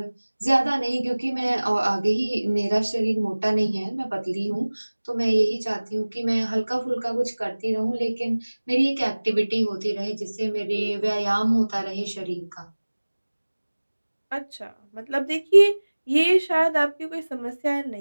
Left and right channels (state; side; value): inverted; both; correlation -1.00